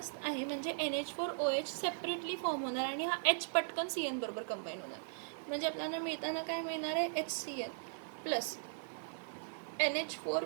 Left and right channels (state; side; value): silent; left; 52 dB below the other